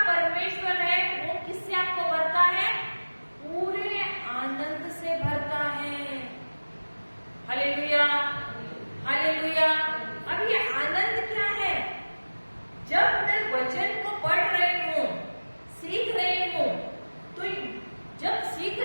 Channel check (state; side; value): inverted; both; correlation -1.00